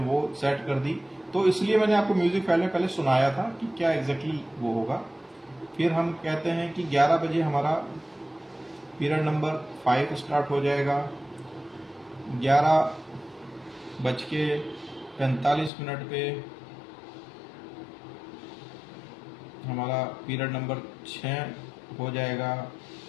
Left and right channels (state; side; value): drops out; right; at 15.7 s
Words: सेट कर दी। तो इसलिए मैंने आपको म्यूजिक फाइल में पहले सुनाया था कि क्या एग्जैक्टली वो होगा। फिर हम कहते हैं कि 11 बजे हमारा पीरियड नंबर 5 स्टार्ट हो जाएगा। 11:45 पे हमारा पीरियड नंबर 6 हो जाएगा।